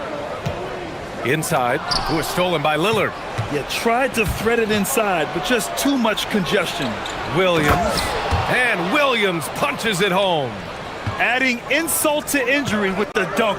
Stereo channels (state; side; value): identical; both; correlation 1.00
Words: Inside, who is stolen by Lillard. Yeah, tried to thread it inside, but just too much congestion. Williams, and Williams punches it home. Adding insult to injury with the